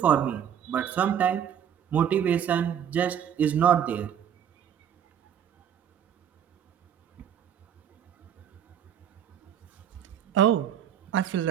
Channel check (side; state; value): left; quieter; 9.1 dB